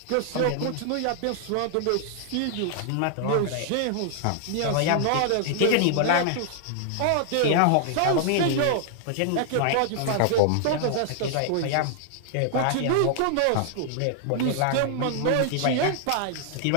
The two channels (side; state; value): both; different; correlation -0.01